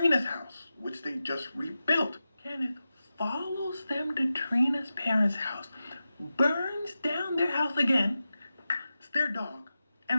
house, which they just rebuilt. Kenneth follows them to Trina's parents' house, burns down their house again, their dog,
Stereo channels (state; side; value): inverted; both; correlation -0.92